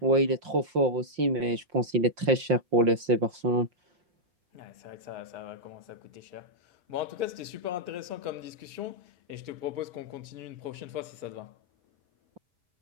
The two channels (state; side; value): late; left; 5.7 ms